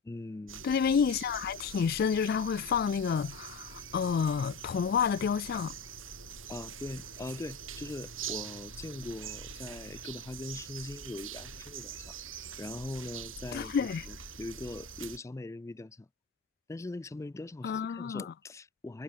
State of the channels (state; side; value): quieter; right; 4.9 dB